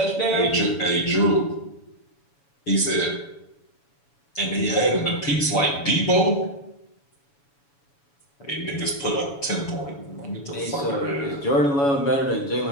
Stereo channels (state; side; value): late; right; 7.1 ms